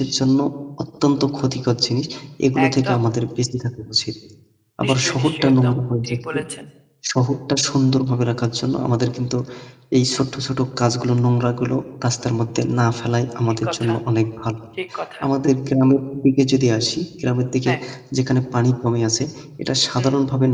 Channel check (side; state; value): both; identical; correlation 1.00